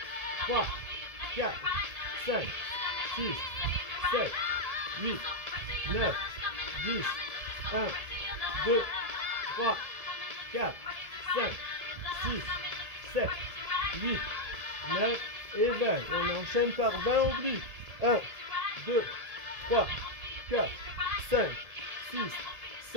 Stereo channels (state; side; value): late; left; 1.7 ms